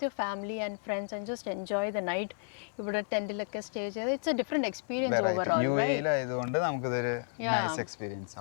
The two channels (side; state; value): right; silent; digital silence